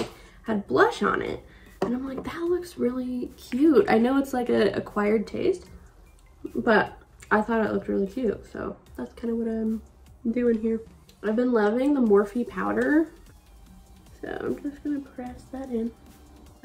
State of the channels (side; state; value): both; identical; correlation 1.00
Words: had blush on it, and I'm like, that looks really cute. I know it's like a acquired taste, but I thought it looked really cute, so that's kind of what I'm doing here. I've been loving the Morphe powder, so I'm just gonna press that in.